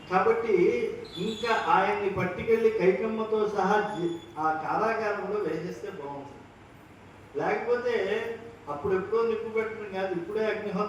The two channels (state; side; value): identical; both; correlation 1.00